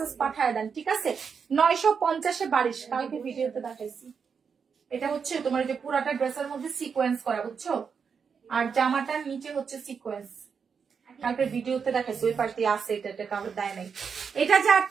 পাঠায় দেন, ঠিক আছে। 950 এ 22। কালকে ভিডিওতে দেখাইছি। এটা হচ্ছে তোমার যে পুরাটা ড্রেসের মধ্যে সিকোয়েন্স করা, বুঝছো, আর জামাটার নিচে হচ্ছে সিকোয়েন্স। কালকে ভিডিওতে দেখাইছি, ওই পাশ দিয়ে আছে, এটা কাউকে দেয় নাই। এটা যার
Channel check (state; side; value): quieter; left; 6.2 dB